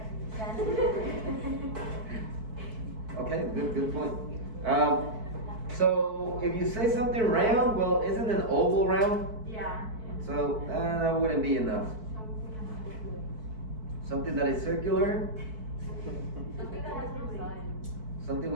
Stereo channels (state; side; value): late; left; 4.6 ms